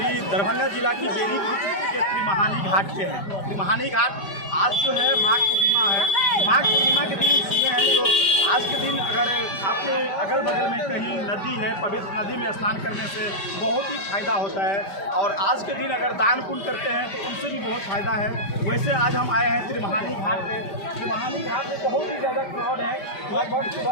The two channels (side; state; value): right; late; 5.1 ms